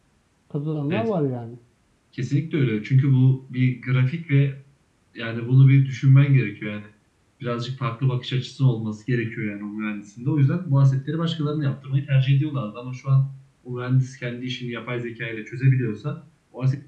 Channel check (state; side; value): identical; both; correlation 1.00